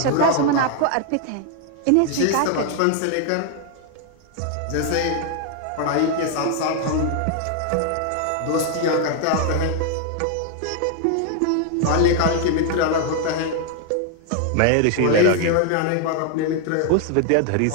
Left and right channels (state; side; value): different; both; correlation 0.00